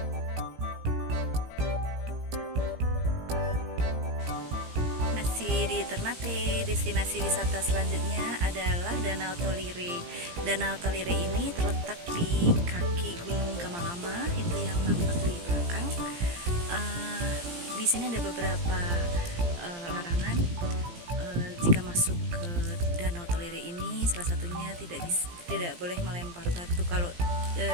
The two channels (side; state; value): left; late; 17 ms